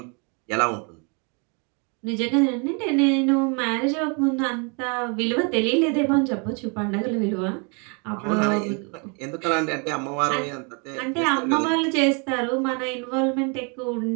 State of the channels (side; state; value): left; quieter; 34.9 dB